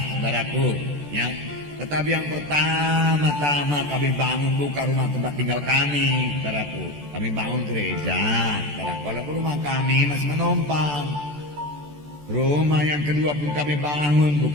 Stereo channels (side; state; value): left; late; 14 ms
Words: saudaraku. Ya, tetapi yang pertama-tama kami bangun bukan rumah tempat tinggal kami saudaraku. Kami bangun gereja saudaraku. Walaupun rumah kami masih menumpang. Rumah yang kedua pun kami bangun